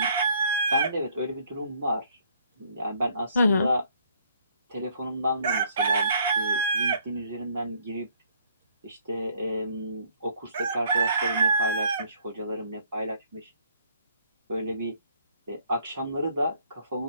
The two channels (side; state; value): both; inverted; correlation -0.64